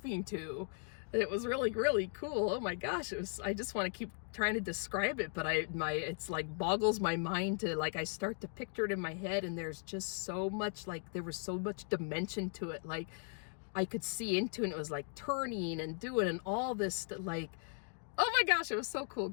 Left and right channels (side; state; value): right; silent; 53 dB below the other